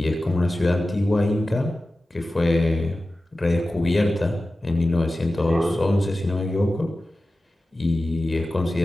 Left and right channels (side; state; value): both; normal; correlation 0.95